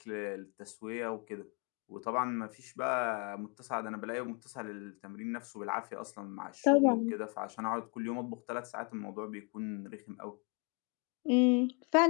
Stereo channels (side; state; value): right; quieter; 33.0 dB